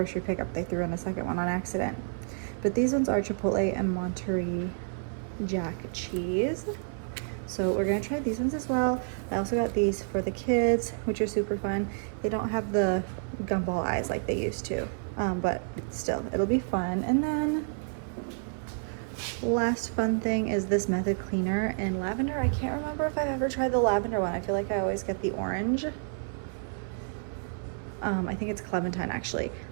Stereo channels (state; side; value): silent; left; 58 dB below the other